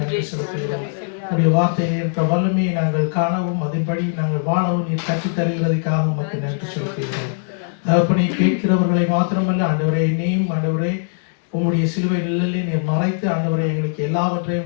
செலுத்துகிறோம். உடைய வார்த்தையில் இருக்கிற வல்லமையை நாங்கள் காணவும் அதன்படி நாங்கள் வாழவும் நீர் கற்றுத் தருகிறதுக்காக உமக்கு நன்றி செலுத்துகிறோம். தகப்பனை கேட்கிறவர்களை மாத்திரமல்ல ஆண்டவரே, என்னையும் ஆண்டவரே உம்முடைய சிலுவை நிழலிலே நீர் மறைத்து ஆண்டவரை எங்களுக்கு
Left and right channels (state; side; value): silent; right; digital silence